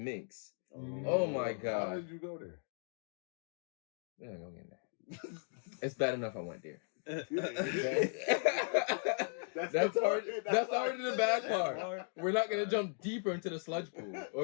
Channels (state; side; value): silent; right; 53 dB below the other